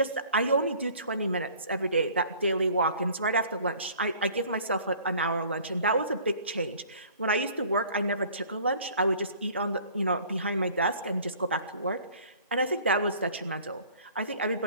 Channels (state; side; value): inverted; both; correlation -0.52